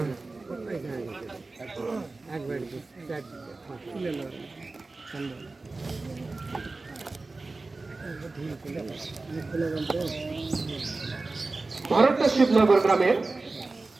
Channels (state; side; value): quieter; left; 3.5 dB